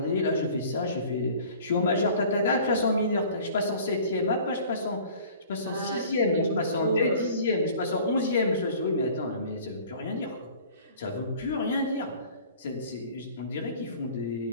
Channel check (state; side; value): inverted; both; correlation -0.48